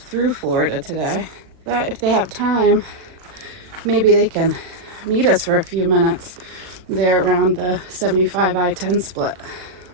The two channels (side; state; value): left; late; 38 ms